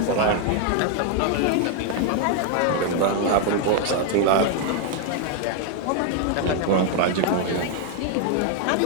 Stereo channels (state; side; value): different; both; correlation 0.00